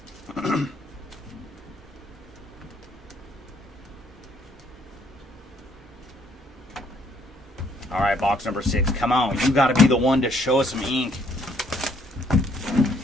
All right, box number 6. Come on, you got to be the one to show us some ink.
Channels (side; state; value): both; normal; correlation 0.67